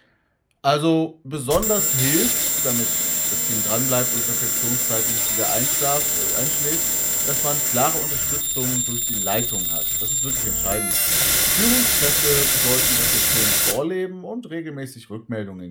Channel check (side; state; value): both; identical; correlation 1.00